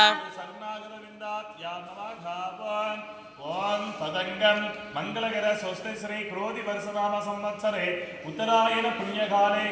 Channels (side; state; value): both; identical; correlation 1.00